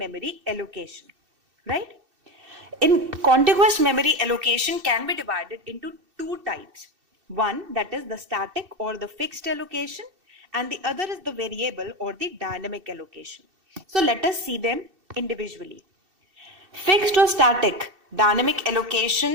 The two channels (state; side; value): late; left; 2.7 ms